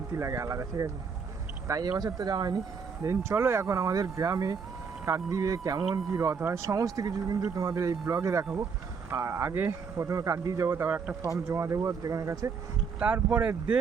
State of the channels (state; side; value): quieter; left; 5.7 dB